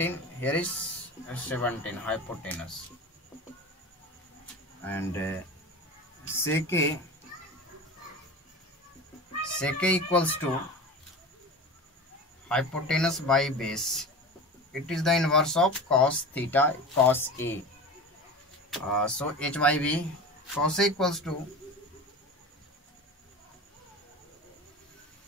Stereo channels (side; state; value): both; normal; correlation 0.32